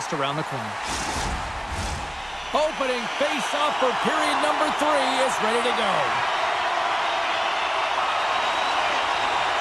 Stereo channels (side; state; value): both; identical; correlation 1.00